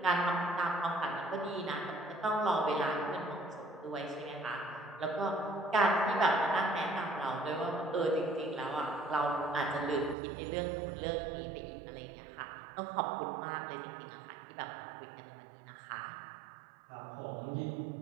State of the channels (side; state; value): left; drops out; at 10.2 s